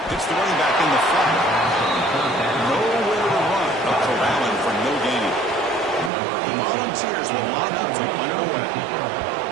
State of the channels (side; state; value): left; drops out; at 6.1 s